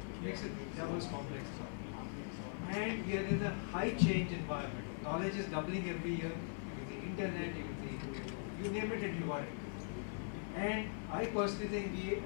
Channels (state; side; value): silent; right; 50 dB below the other